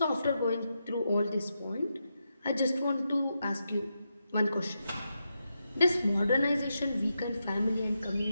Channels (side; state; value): both; inverted; correlation -0.86